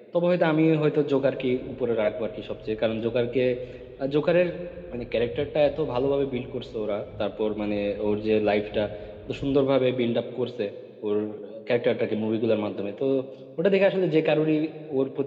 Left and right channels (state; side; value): identical; both; correlation 1.00